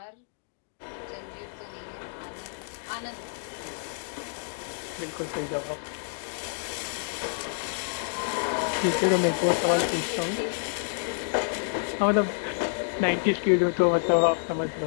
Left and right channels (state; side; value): silent; right; digital silence